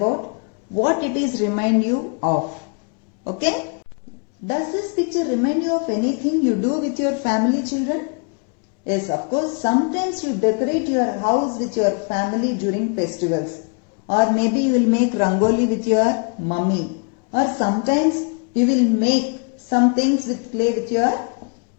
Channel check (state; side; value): quieter; right; 36.9 dB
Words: what it is remind you of. Okay? Does this picture remind you of anything you do with your family children? Yes, of course, sometimes you decorate your house with your family during festivals. Or maybe you will make rangoli with your mummy. Or sometimes you will make some things with clay with your